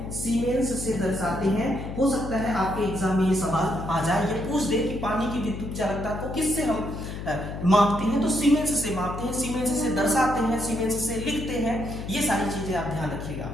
सीमेंस से दर्शाते हैं। हो सकता है आपके एग्जाम में ये सवाल आ जाए, ये पूछ दे कि पानी की विद्युत चालकता को किससे हम मापते हैं? तो सीमेंस से मापते हैं, सीमेंस से दर्शाते हैं, सीमेंस से लिखते हैं। ये सारी चीजें आप ध्यान रखिएगा,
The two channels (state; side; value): noise; left; hum, 8 dB below the sound